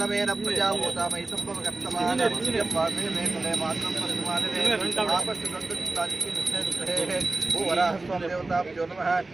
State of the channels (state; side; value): quieter; left; 3.2 dB